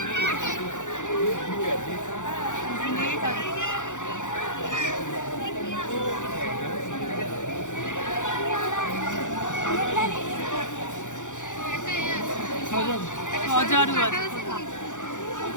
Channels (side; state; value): right; late; 0.86 ms